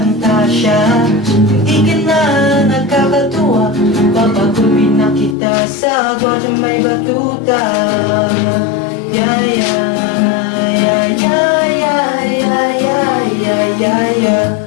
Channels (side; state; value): right; drops out; at 5.4 s